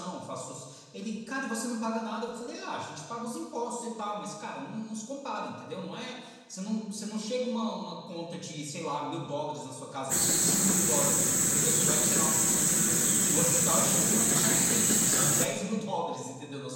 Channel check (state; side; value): identical; both; correlation 1.00